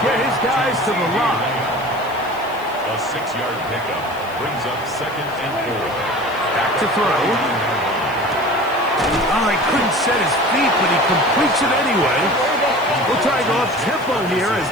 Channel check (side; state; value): left; noise; hiss, 23 dB below the sound